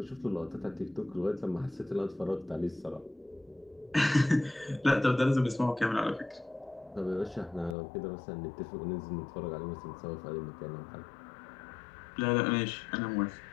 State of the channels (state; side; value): drops out; right; at 7.8 s